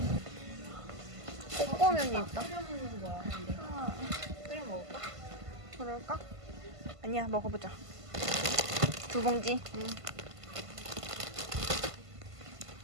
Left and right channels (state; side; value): late; left; 1.5 ms